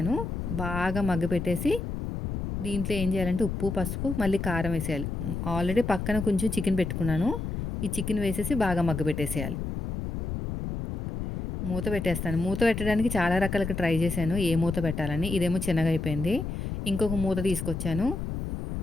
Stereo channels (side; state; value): left; noise; rumble, 4 dB below the sound